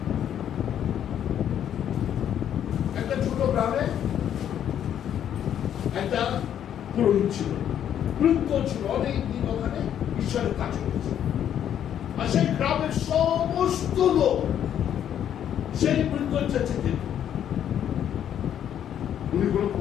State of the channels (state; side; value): quieter; right; 9.9 dB